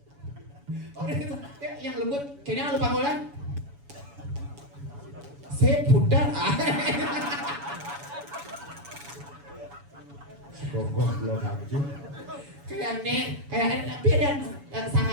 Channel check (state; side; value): late; left; 7.1 ms